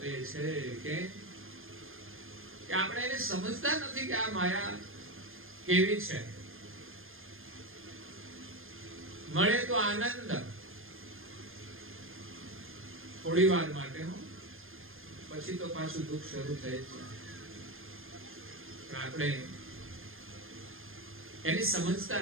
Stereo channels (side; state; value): left; late; 0.60 ms